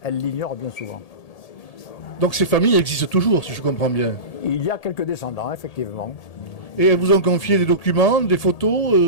elles l'ignorent bien souvent. Donc ces familles existent toujours, si je comprends bien. Il y a quelques descendants, effectivement. Et elles vous ont confié des documents, des photos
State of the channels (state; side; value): late; right; 1.8 ms